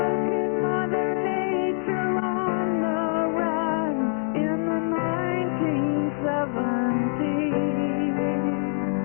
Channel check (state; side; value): silent; right; digital silence